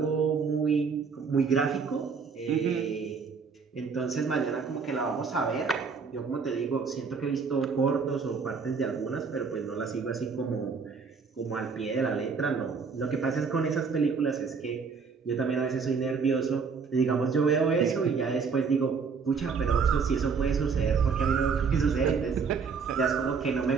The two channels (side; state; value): left; quieter; 5.4 dB